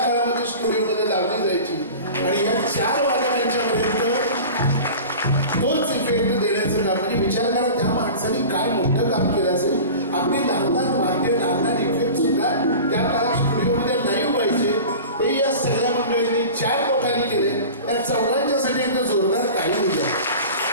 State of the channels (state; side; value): inverted; both; correlation -0.36